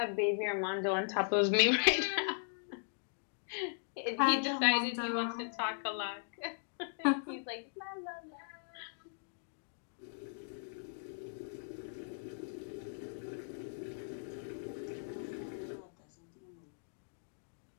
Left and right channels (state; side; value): silent; right; digital silence